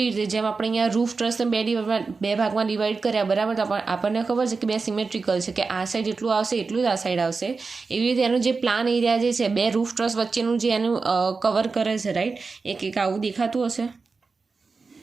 રીતે જેમ આપણે અહીંયા રૂફ ટ્રસને બે ભાગમાં ડિવાઈડ કર્યા, બરાબર. તો આપણને ખબર છે કે બે સિમેટ્રિકલ છે કે આ સાઈડ જેટલું આવશે એટલું જ આ સાઈડ આવશે. એવી રીતે એનું જે પ્લાન એરિયા જે છે બે રૂફ ટ્રસ વચ્ચેનું જે એનું કવર કરે છે, રાઈટ. એક આવું દેખાતું હશે.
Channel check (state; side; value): quieter; left; 4.4 dB